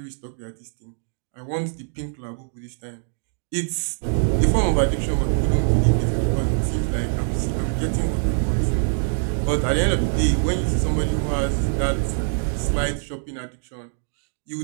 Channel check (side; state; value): left; silent; digital silence